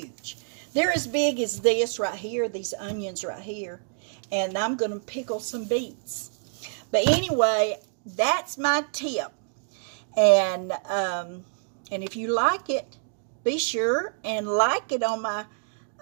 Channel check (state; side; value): silent; left; digital silence